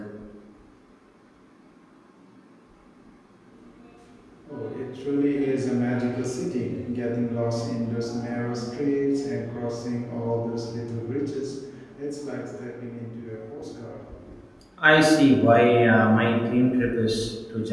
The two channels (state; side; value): identical; both; correlation 1.00